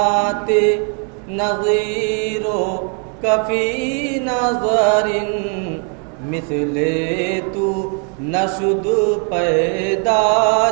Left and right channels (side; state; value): left; quieter; 39.0 dB